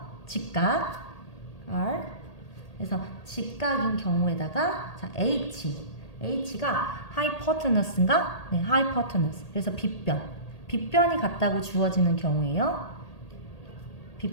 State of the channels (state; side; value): late; right; 1.8 ms